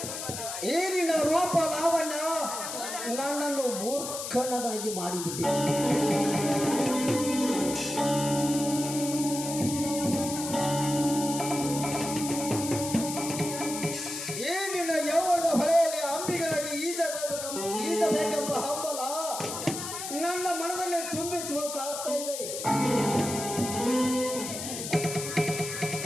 ಈ ನಿನ್ನ ರೂಪ ಲಾವಣ್ಯ ನನ್ನನ್ನು ಮೂರ್ಖನದಾಗಿ ಮಾಡಿಬಿಟ್ಟಿದೆ. ಈ ನಿನ್ನ ಯೌವನದ ಹೊಳೆಯಲ್ಲಿ ಅಂಬಿಗನಾಗಿ ಈಜಬೇಕೆಂಬ ಹಂಬಲ ನನ್ನ ಮನದಲ್ಲಿ ತುಂಬಿ ತುಳುಕಾಡ್ತಾ ಇದೆ.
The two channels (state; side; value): noise; left; hiss, 6 dB below the sound